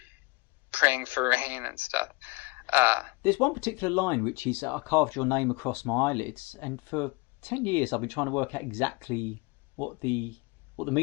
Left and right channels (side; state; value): right; quieter; 26.3 dB